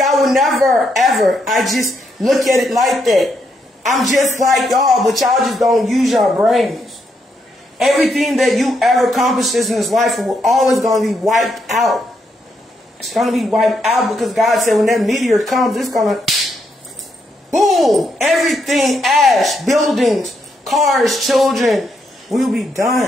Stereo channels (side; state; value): both; normal; correlation 0.78